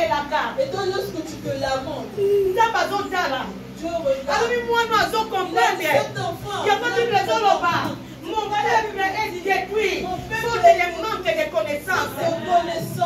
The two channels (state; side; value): identical; both; correlation 1.00